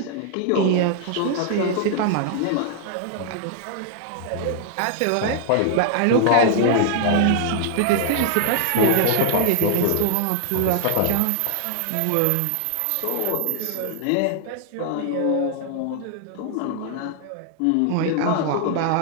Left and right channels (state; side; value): different; both; correlation 0.00